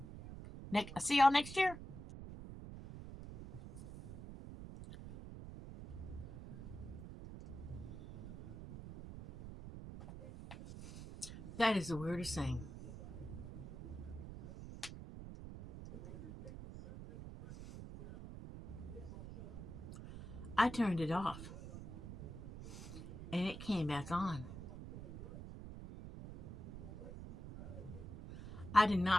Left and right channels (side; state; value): right; noise; rumble, 11 dB below the sound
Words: I'll see y'all next year. That is the weirdest thing. I turned it off and it came back on. I did